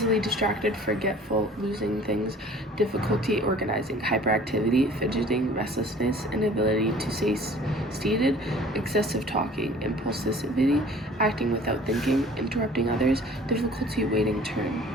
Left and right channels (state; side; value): normal; both; correlation 0.49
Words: distracted, forgetful, losing things, difficulty organizing. Hyperactivity, fidgeting, restlessness, inability to stay seated, excessive talking. Impulsivity, acting without thinking, interrupting others, difficulty waiting turn.